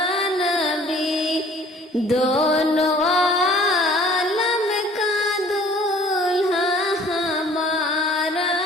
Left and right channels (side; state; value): both; normal; correlation 0.53